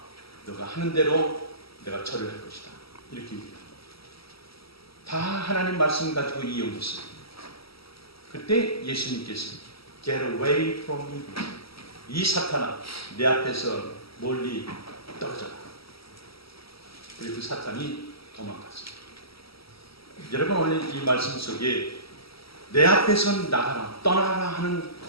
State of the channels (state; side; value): late; right; 0.75 ms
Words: 너가 하는 대로 내가 절을 할 것이다. 이렇게 얘기합니다. 다 하나님 말씀 가지고 이용했어요. 그때 예수님께서 Get away from me. 이 사탄아, 내 앞에서 멀리 떨어져라. 그리고 그 사탄이 도망갔습니다. 여러분 오늘 이 말씀 속에 내 앞에서 나가라, 떠나라 하는